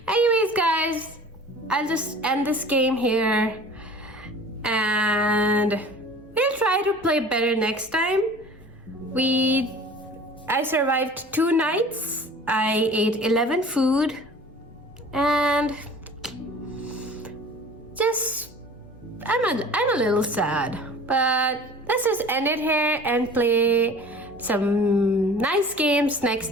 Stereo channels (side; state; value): both; normal; correlation 0.44